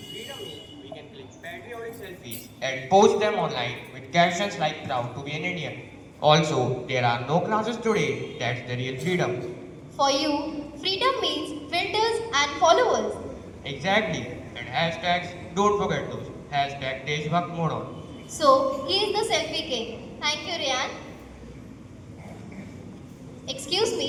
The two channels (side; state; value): both; identical; correlation 1.00